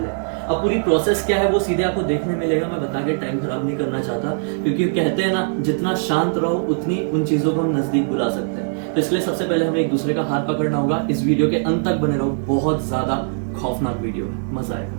अब पूरी प्रोसेस क्या है वो सीधे आपको देखने मिलेगा। मैं बता के टाइम खराब नहीं करना चाहता, क्योंकि कहते हैं ना, जितना शांत रहो उतनी उन चीजों को हम नजदीक बुला सकते हैं। तो इसलिए सबसे पहले हमें एक दूसरे का हाथ पकड़ना होगा। इस वीडियो के अंत तक बने रहो, बहुत ज्यादा खौफनाक वीडियो, मजा आएगा।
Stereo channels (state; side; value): silent; left; digital silence